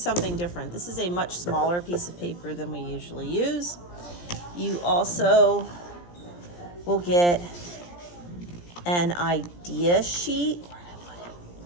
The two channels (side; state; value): right; late; 17 ms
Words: different. This is a much smaller piece of paper than we usually use. You also will get an idea sheet.